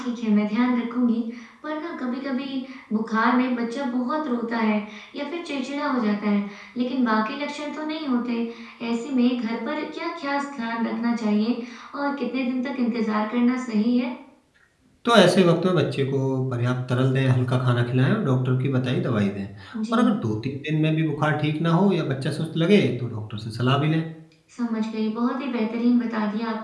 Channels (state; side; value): identical; both; correlation 1.00